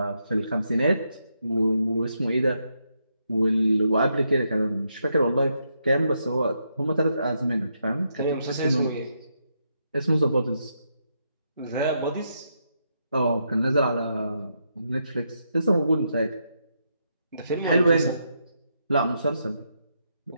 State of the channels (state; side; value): inverted; both; correlation -0.80